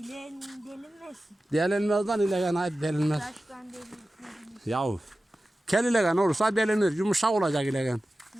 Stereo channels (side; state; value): both; normal; correlation 0.95